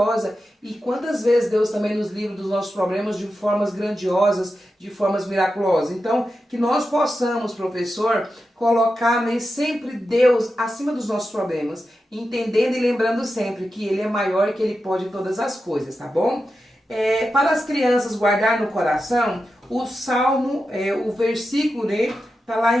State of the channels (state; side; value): normal; both; correlation 0.90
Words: E quantas vezes Deus também nos livra dos nossos problemas de formas grandiosas, de formas miraculosas. Então, que nós possamos, professor, colocar, né, sempre Deus acima dos nossos problemas, entendendo e lembrando sempre que Ele é maior e que Ele pode todas as coisas, tá bom? Para as crianças guardar no coração, o Salmo, o versículo, né, está lá